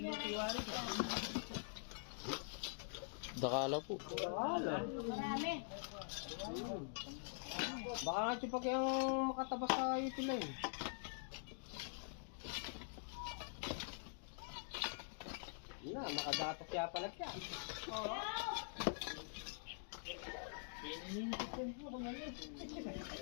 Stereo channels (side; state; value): right; silent; digital silence